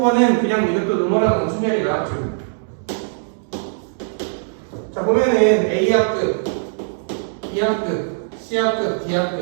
그냥 이것도 노멀한 순열이 나왔죠. 자, 보면은 A학급, B학급, C학급,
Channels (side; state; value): left; silent; digital silence